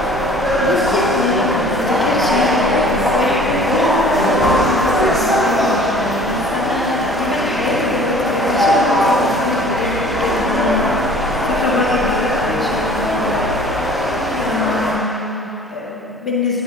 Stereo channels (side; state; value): both; normal; correlation 0.48